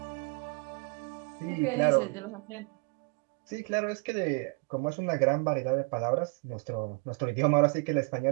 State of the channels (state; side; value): quieter; left; 31.0 dB